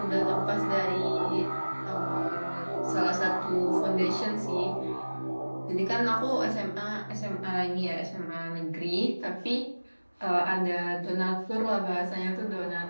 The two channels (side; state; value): both; inverted; correlation -1.00